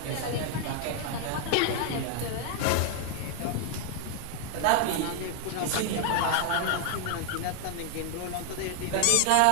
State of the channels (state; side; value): different; both; correlation 0.00